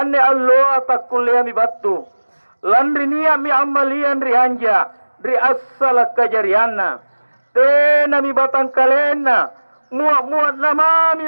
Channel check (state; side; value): inverted; both; correlation -1.00